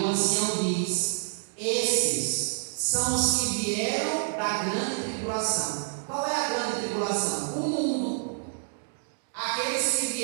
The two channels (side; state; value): left; silent; digital silence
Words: ancião diz: esses são os que vieram da grande tribulação. Qual é a grande tribulação? O mundo. Aqueles que